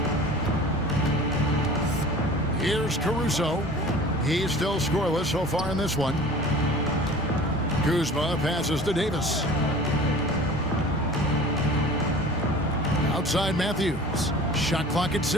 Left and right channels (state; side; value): normal; both; correlation 0.42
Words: Here's Caruso. He's still scoreless so far in this one. Kuzma passes to Davis. Outside Matthews. Shot clock at